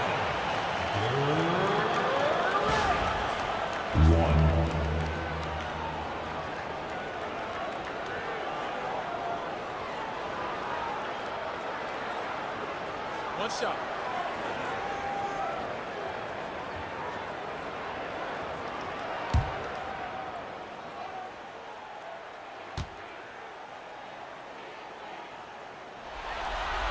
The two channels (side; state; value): both; identical; correlation 1.00